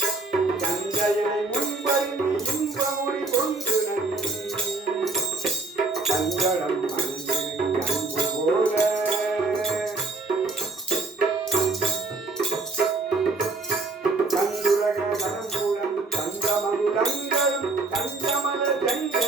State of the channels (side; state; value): left; quieter; 3.6 dB